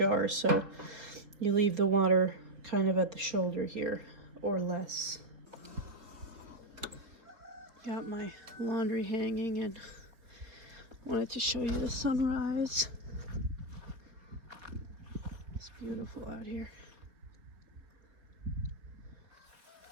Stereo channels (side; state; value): left; late; 4.0 ms